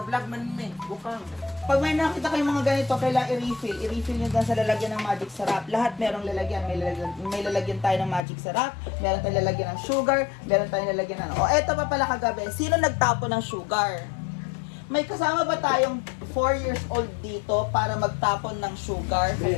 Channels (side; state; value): right; drops out; at 8.2 s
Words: man may. Bukang. Pag may nakita kayong mga ganito, kailangan i-refill. I-refill nyo dyan sa lalagyan ng magic syrup. Lahat merong lalagyan. May lalagyan tayo ng magic syrup, meron tayong lalagyan ng sugar, meron tayong lalagyan ng... eto pa pala kagabi. Sino nagtapo ng sugar? May kasama ba tayong 4 years old dito para magtapon ng sugar sa